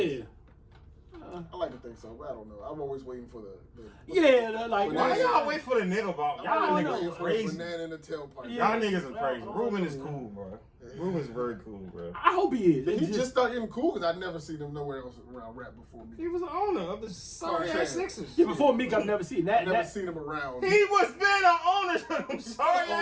I like to think so, but I don't know. I'm always waiting for the like why y'all wait for the nigga ball? Y'all niggas crazy. Banana in the tailpipe. Yeah. Y'all niggas are crazy. Ruben is cool, bro. Ruben's very cool, bro. I hope he is. He just started getting cool because I'd never seen him nowhere else around rap before me. He was the owner of the sorry ass Sixers. Yeah, before Meek, I've never seen that. Never seen him around. He was been an owner of them sorry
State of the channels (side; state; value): both; identical; correlation 1.00